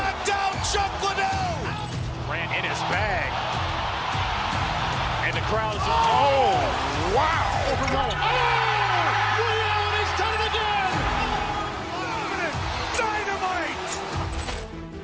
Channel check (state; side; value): identical; both; correlation 1.00